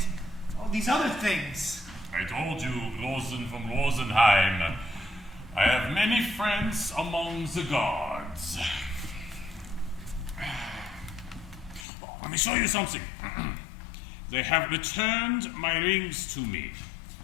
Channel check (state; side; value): drops out; right; at 11.9 s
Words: all these other things? I told you, Rosen from Rosenheim. I have many friends among the guards. Let me show you something. They have returned my rings to me.